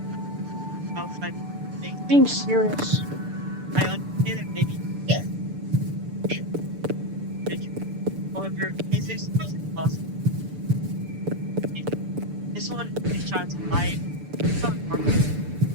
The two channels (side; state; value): left; late; 6.8 ms